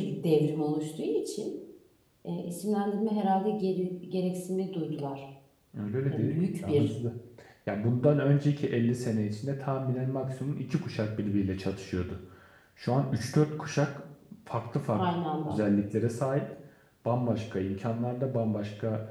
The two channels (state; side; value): identical; both; correlation 1.00